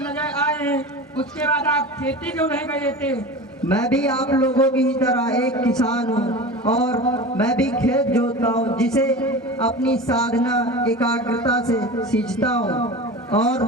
आए हैं, उसके बाद आप खेती क्यों नहीं गए थे? मैं भी आप लोगों की ही तरह एक किसान हूँ और मैं भी खेत जोतता हूँ, जिसे अपनी साधना एकाग्रता से सींचता हूँ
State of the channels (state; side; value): normal; both; correlation 0.32